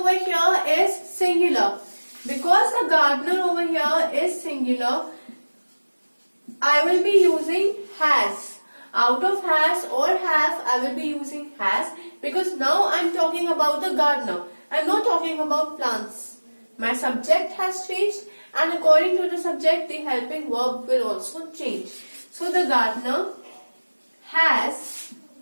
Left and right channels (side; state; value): both; inverted; correlation -1.00